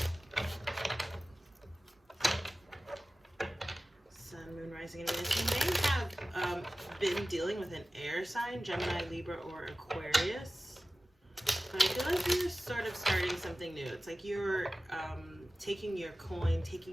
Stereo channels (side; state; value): both; normal; correlation 0.96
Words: Sun, Moon, Rising, and Venus. You may have been dealing with an air sign, Gemini, Libra, or Aquarius. But I feel like you're sort of starting something new. It's like you're taking your coin,